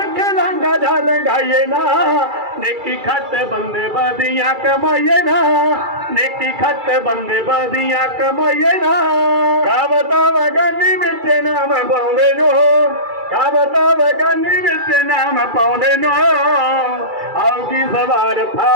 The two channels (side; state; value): left; late; 2.3 ms